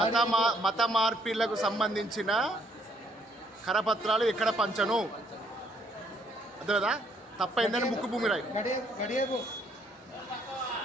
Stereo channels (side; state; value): both; normal; correlation 0.67